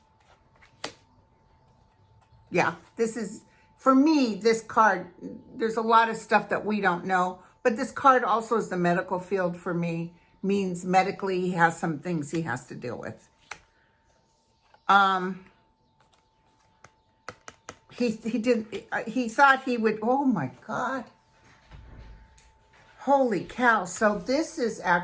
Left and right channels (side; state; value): both; identical; correlation 1.00